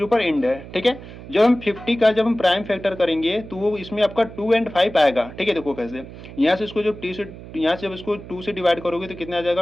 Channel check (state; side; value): noise; right; hum, 15 dB below the sound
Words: पर एंड है, ठीक है। जब हम 50 का जब हम प्राइम फैक्टर करेंगे तो वो इसमें आपका 2 एंड 5 आएगा, ठीक है। देखो कैसे, यहाँ से इसको जो टी से, यहाँ से जब इसको 2 से डिवाइड करोगे तो कितना आ